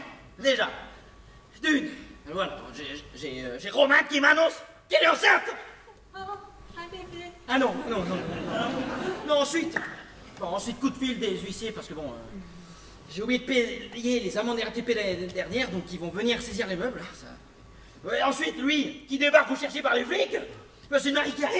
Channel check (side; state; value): both; identical; correlation 1.00